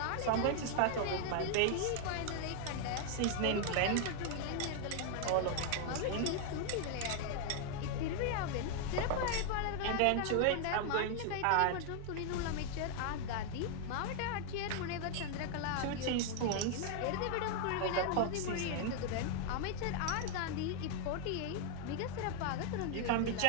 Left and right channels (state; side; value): different; both; correlation 0.00